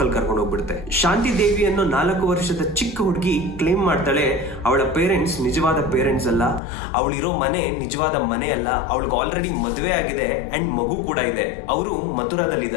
ಅಲ್ಲಿ ಕರ್ಕೊಂಡು ಹೋಗ್ಬಿಡುತ್ತೆ. ಶಾಂತಿ ದೇವಿ ಅನ್ನೋ 4 ವರ್ಷದ ಚಿಕ್ಕ ಹುಡುಗಿ ಕ್ಲೇಮ್ ಮಾಡ್ತಾಳೆ ಅವಳ ಪೇರೆಂಟ್ಸ್ ನಿಜವಾದ ಪೇರೆಂಟ್ಸ್ ಅಲ್ಲ, ಅವಳಿರೋ ಮನೆ ನಿಜವಾದ ಮನೆ ಅಲ್ಲ, ಅವಳಿಗೆ ಆಲ್ರೆಡಿ ಮದುವೆ ಆಗಿದೆ ಅಂಡ್ ಮಗು ಕೂಡ ಇದೆ, ಅವರು ಮಥುರಾದಲ್ಲಿ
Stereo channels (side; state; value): right; drops out; at 6.6 s